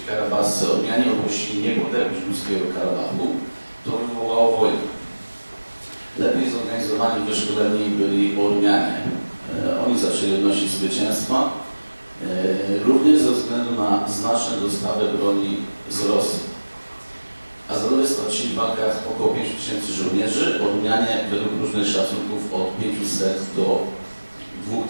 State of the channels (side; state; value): both; inverted; correlation -1.00